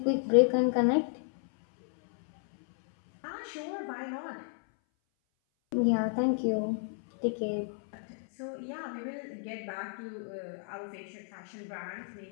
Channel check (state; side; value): silent; right; 56 dB below the other